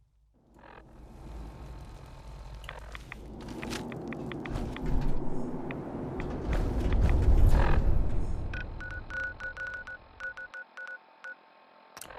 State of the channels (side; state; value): both; identical; correlation 1.00